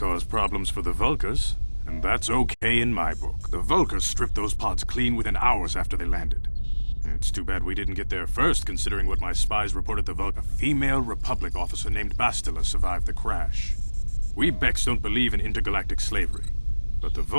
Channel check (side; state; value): both; inverted; correlation -1.00